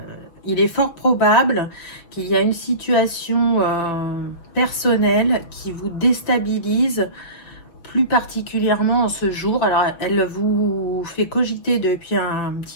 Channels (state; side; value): late; right; 6.4 ms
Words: Il est fort probable qu'il y a une situation personnelle qui vous déstabilise plus particulièrement en ce jour. Alors, elle vous fait cogiter depuis un